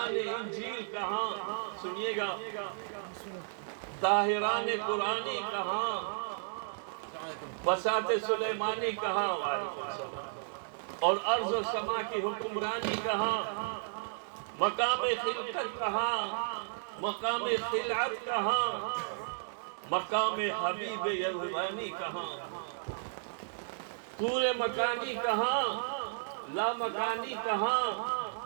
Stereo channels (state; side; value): silent; left; digital silence